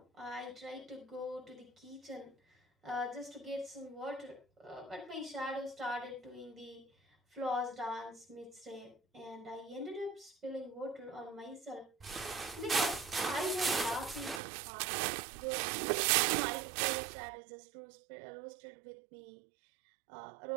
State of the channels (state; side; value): drops out; left; at 14.4 s